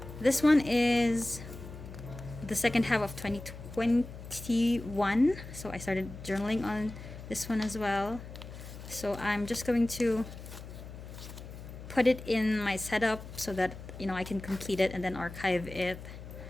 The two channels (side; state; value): left; noise; hum, 13 dB below the sound